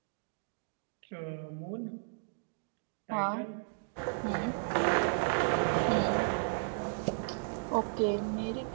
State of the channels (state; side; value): silent; left; digital silence